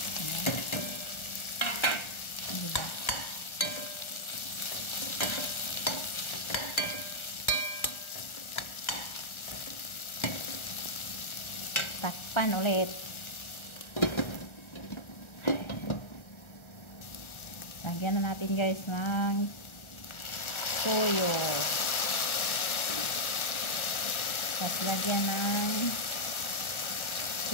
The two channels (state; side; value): late; right; 1.4 ms